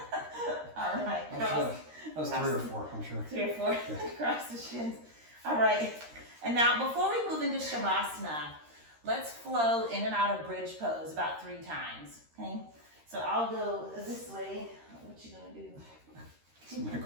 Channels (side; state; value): left; late; 13 ms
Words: All right. I was was 3 or 4, I'm sure. 3 or 4 Yeah. across the shins. All right. And now before we move into Shavasana, let's flow in and out of bridge pose about 3 times. Okay. So I'll go this way. What you gonna do? So I'm gonna